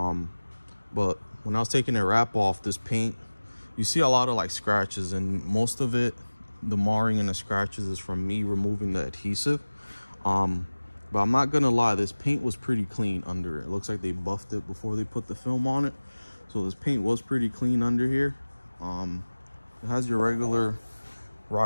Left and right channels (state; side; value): inverted; both; correlation -1.00